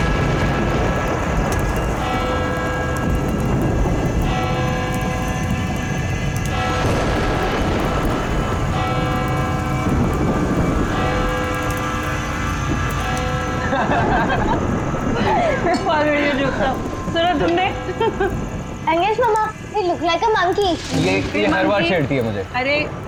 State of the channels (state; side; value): identical; both; correlation 1.00